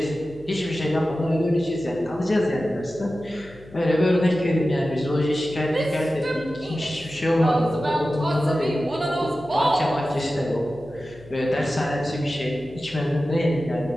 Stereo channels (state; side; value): noise; left; hum, 22 dB below the sound